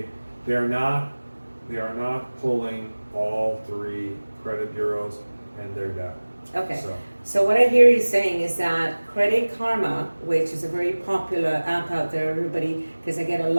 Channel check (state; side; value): inverted; both; correlation -1.00